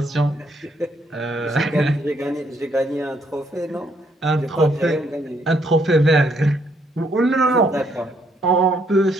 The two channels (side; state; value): both; normal; correlation 0.71